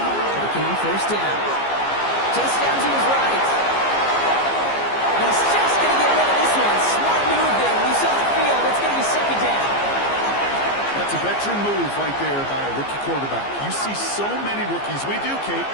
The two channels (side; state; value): right; late; 15 ms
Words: on first down. Chase down to his right. He's just going to get rid of this one. Smart move there. When you saw the field, it's going to be 2nd down. That's a veteran move right there by a rookie quarterback. You see so many rookies, we do, Kate,